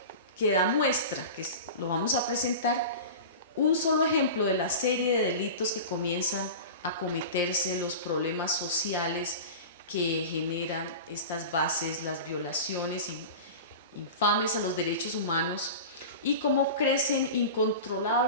que da muestra, que lo vamos a presentar, un solo ejemplo de la serie de delitos que comienzan a cometerse, los problemas sociales que generan estas bases, las violaciones infames a los derechos humanos, y cómo crecen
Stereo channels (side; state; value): both; inverted; correlation -0.31